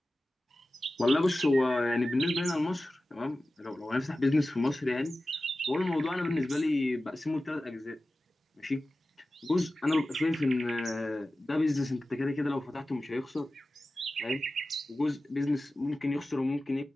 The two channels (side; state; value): both; normal; correlation 0.95